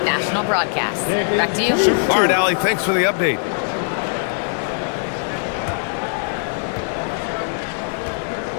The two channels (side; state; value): right; silent; digital silence